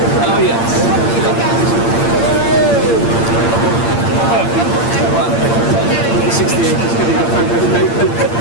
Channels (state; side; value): late; right; 8.7 ms